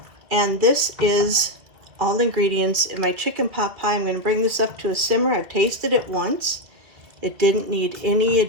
And this is all the ingredients in my chicken pot pie. I'm going to bring this up to a simmer. I've tasted it once. It didn't need any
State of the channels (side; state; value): left; late; 2.1 ms